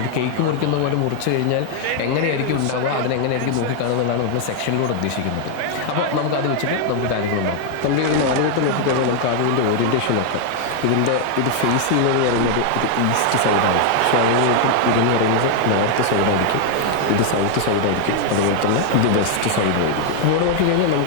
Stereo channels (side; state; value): both; different; correlation 0.00